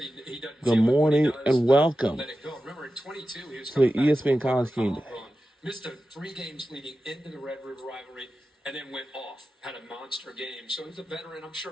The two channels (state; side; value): normal; both; correlation 0.93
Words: Good morning and welcome let it go. Remember, in 22, he was to the coming back ESPN College Game Day. missed 3 games leading into the Red River rivalry, and then went off, had a monster game. So he's a veteran. I'm